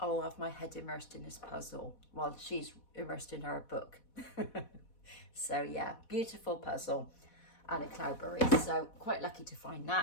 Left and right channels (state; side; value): late; right; 4.1 ms